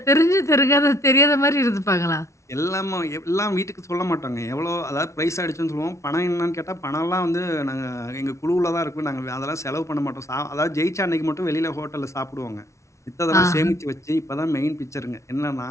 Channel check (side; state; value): right; late; 0.14 ms